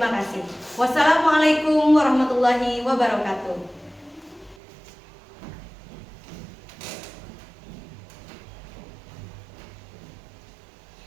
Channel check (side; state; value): left; drops out; at 4.5 s